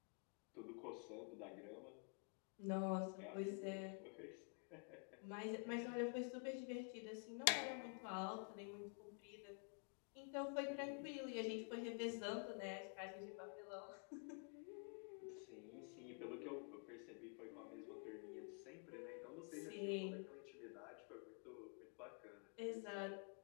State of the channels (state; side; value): quieter; right; 37.8 dB